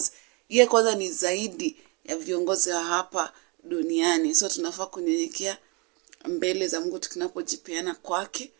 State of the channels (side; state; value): left; quieter; 30.6 dB